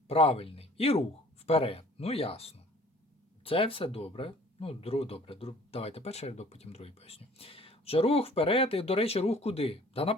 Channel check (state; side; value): normal; both; correlation 0.51